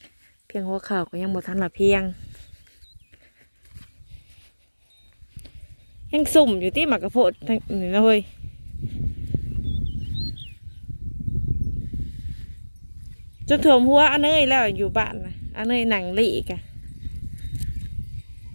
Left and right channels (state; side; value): inverted; both; correlation -1.00